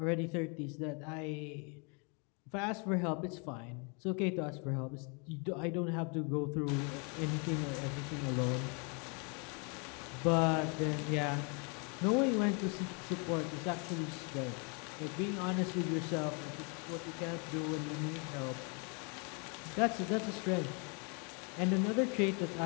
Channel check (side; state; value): right; quieter; 34.7 dB